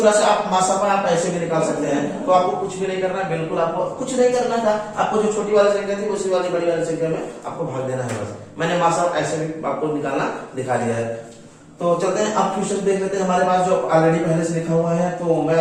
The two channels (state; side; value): identical; both; correlation 1.00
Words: से आप मासापा आप ऐसे भी निकाल सकते हैं। तो आपको कुछ भी नहीं करना है, बिल्कुल आपको कुछ नहीं करना था, आपको जो छोटी वाली संख्या थी उसी वाली बड़ी वाली संख्या में आपको भाग देना है बस। मैंने मासापा ऐसे भी आपको निकालना दिखा दिया है। तो चलते हैं अब क्वेश्चन देख लेते हैं, हमारे पास जो ऑलरेडी पहले से लिखा हुआ है, तो मैं